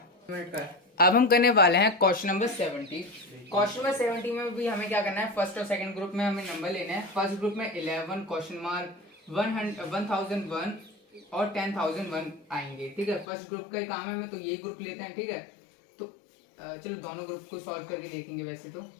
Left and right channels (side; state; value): right; drops out; at 13.2 s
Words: अब हम करने वाले हैं क्वेश्चन नंबर 70। क्वेश्चन नंबर 70 में भी हमें क्या करना है, फर्स्ट और सेकंड ग्रुप में हमें नंबर लेने हैं। फर्स्ट ग्रुप में 11 क्वेश्चन मार्क 1001 और 10,001 आएंगे। ठीक है, फर्स्ट ग्रुप का ही काम है हमें, तो ये ग्रुप लेते हैं। ठीक है, तो चलो दोनों ग्रुप को सॉल्व करके देखेंगे। वैसे तो